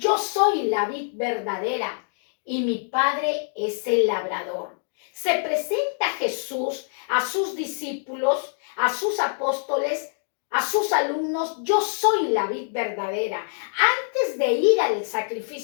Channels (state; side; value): silent; right; 62 dB below the other